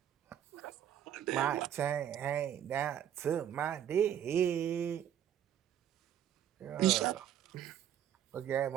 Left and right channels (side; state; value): left; quieter; 10.1 dB